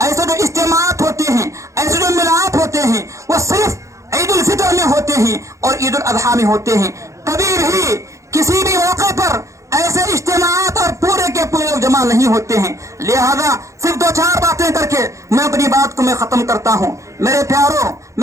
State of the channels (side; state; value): left; late; 0.15 ms